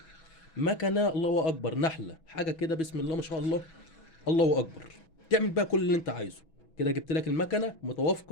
مكنة الله أكبر نحلة. حاجة كده بسم الله ما شاء الله الله أكبر. تعمل بقى كل اللي أنت عايزه. كده جبت لك المكنة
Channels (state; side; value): late; right; 6.1 ms